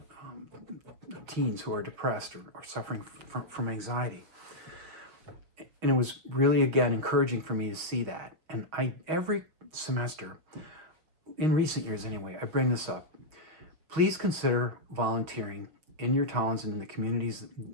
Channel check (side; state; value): left; late; 6.5 ms